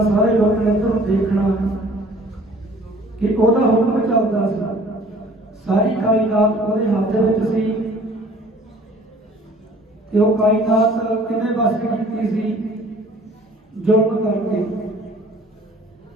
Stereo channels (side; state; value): both; normal; correlation 0.52